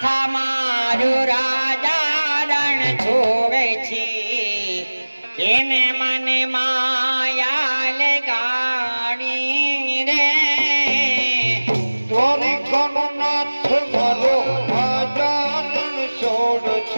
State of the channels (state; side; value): inverted; both; correlation -1.00